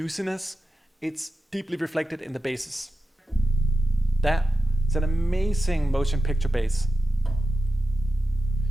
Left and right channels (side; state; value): both; normal; correlation 0.90